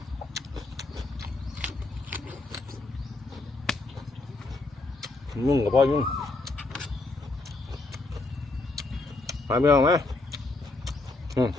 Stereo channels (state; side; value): quieter; right; 3.2 dB